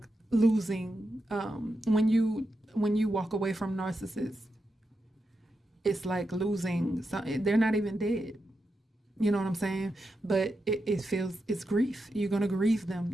losing. When you walk away from narcissists, it's like losing. They're not even dead. You know what I'm saying? But it feels, it's grief. You're going to grieve them.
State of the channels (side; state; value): both; normal; correlation 0.87